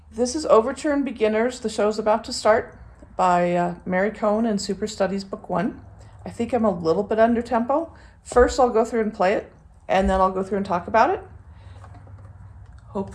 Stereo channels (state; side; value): identical; both; correlation 1.00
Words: This is Overture and Beginners. The show's about to start by Mary Cohen in Superstudies Book 1. I think I'm a little bit under tempo. First, I'll go through and play it, and then I'll go through and talk about it.